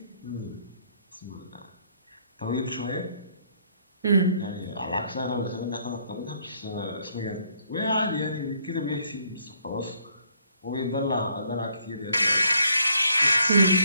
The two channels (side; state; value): both; inverted; correlation -0.67